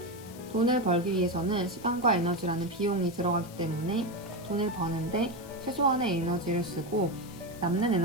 돈을 벌기 위해서는 시간과 에너지라는 비용이 들어가기 때문에 돈을 버는데 최소한의 에너지를 쓰고 남는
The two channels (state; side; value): noise; left; hiss, 19 dB below the sound